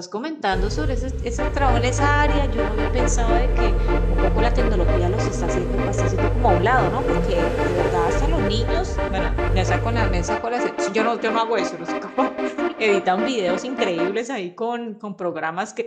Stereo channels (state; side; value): identical; both; correlation 1.00